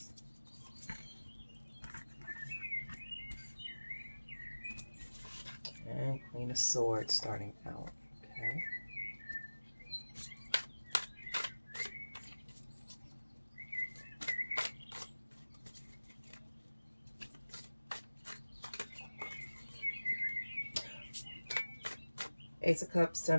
And Queen of Swords starting out. Okay. Ace of Cups,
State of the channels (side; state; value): both; inverted; correlation -1.00